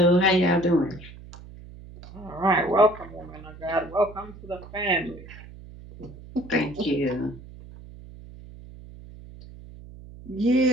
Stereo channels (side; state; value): right; noise; hum, 17 dB below the sound